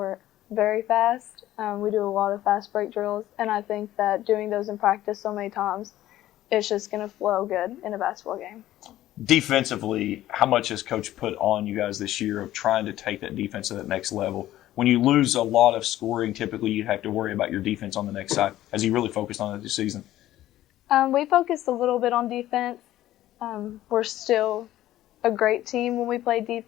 very fast. We do a lot of fast break drills, and I think that doing those in practice so many times, it's just going to flow good in a basketball game. Defensively, how much has Coach put on you guys this year of trying to take that defense to that next level? When you lose a lot of scoring, typically you have to worry about your defense on the next side. Has he really focused on it this season? We focused a little bit on defense. We're still a great team when we play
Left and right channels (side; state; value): right; quieter; 14.1 dB